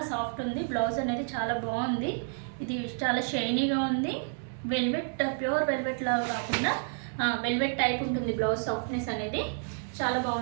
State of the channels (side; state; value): left; silent; 58 dB below the other